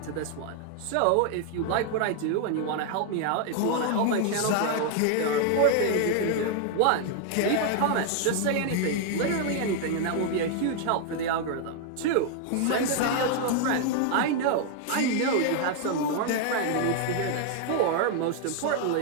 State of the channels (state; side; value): different; both; correlation 0.00